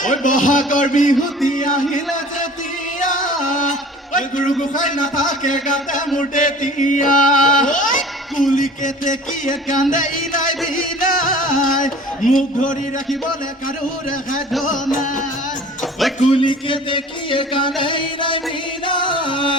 ঐ বহাগৰ বিহুতি আহিলে যেতিয়া ঐ গুৰু গোসাঁই নাথাকে গাতে মোৰ তেতিয়া কুলিকে তেকিয়ে কান্দে ইনাই বিনাই মুখ ধৰি ৰাখিবলৈ কাৰো ৰেখাই নাই ঐ ওই কুলিকে দেখিয়ে কানাই নাই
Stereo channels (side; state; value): both; normal; correlation 0.45